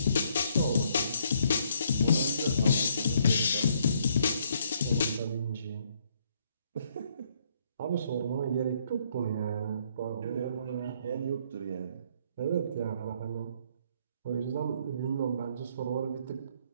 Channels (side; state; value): both; inverted; correlation -0.68